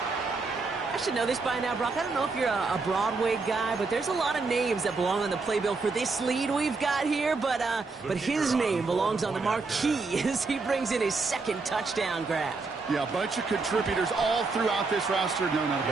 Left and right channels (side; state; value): left; quieter; 4.1 dB